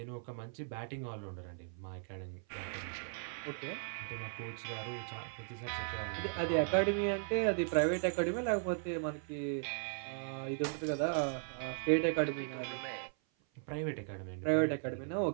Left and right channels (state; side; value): silent; left; 53 dB below the other